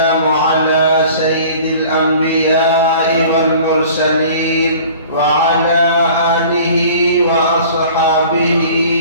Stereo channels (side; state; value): both; inverted; correlation -0.46